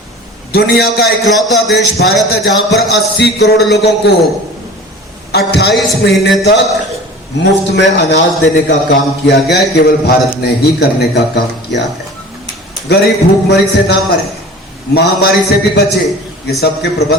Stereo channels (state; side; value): normal; both; correlation 0.40